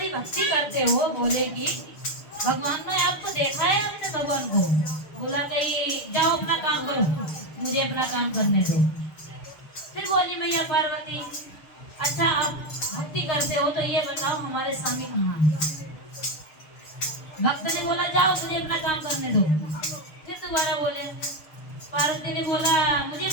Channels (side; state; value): right; late; 6.6 ms